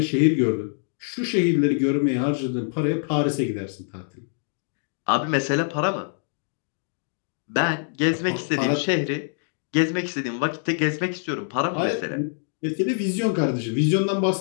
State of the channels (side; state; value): right; silent; digital silence